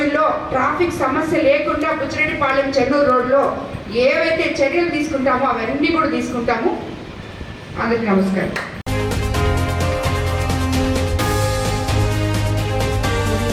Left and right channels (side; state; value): both; identical; correlation 1.00